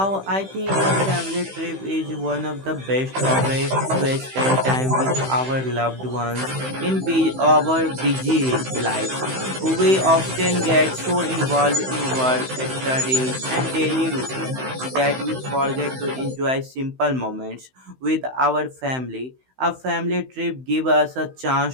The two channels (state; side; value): late; left; 15 ms